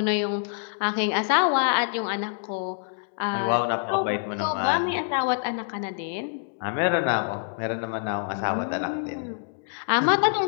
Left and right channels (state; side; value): silent; right; digital silence